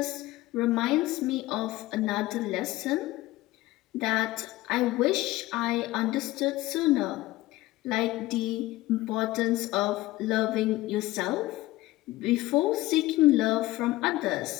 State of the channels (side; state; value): right; quieter; 17.8 dB